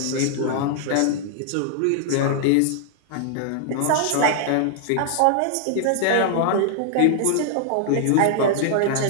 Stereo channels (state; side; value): different; both; correlation 0.00